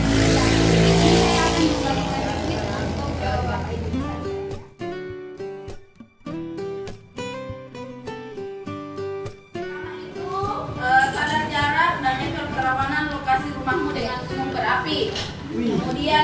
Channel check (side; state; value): both; identical; correlation 1.00